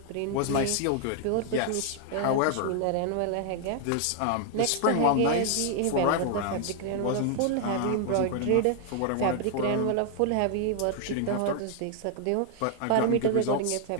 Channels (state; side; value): different; both; correlation 0.00